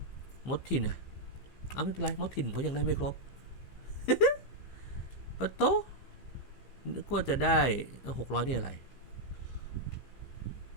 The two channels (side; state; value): right; late; 15 ms